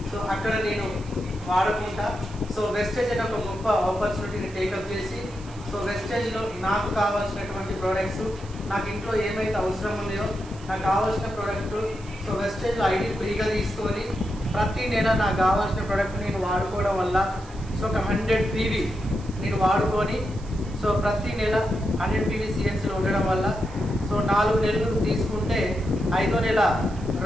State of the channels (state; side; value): noise; right; hiss, 23 dB below the sound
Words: అక్కడ నేను వాడుకుంటా. వెస్టేజ్ అనే ఒక గొప్ప ఆపర్చునిటీని టేకప్ చేసి వెస్టేజ్లో నాకు కావాల్సినటువంటి ప్రోడక్ట్స్, నాకు ఇంట్లో ఏమైతే అవసరం ఉన్నాయో నాకు కావాల్సిన ప్రోడక్ట్ వెస్టేజ్లో ఐడి ఫ్రీగా తీసుకొని ప్రతి నెల నాకు కావాల్సిన ప్రోడక్ట్ నేను వాడుకోవడం వల్ల ఒక 100 PV నేను వాడుకొని ప్రతి నెల 100 PV సిఎన్సీలో ఉండడం వల్ల 4 నెలలు తీసుకుంటే 5వ నెల